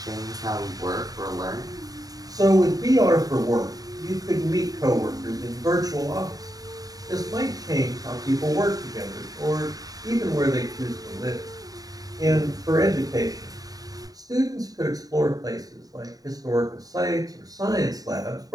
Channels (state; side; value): late; left; 0.18 ms